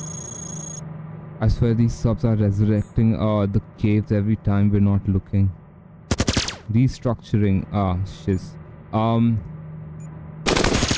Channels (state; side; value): identical; both; correlation 1.00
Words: I swear these subs are resurrecting the caves every time we're not looking. Restructuring. Shiz.